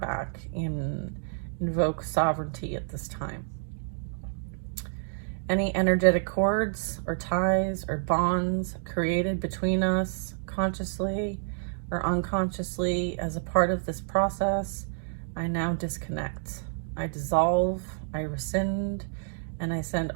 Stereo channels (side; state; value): left; silent; digital silence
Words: and invoke sovereignty at this time. any energetic cords or ties or bonds created between us consciously or unconsciously as a part of this process, I now disconnect. I dissolve, I rescind, and I send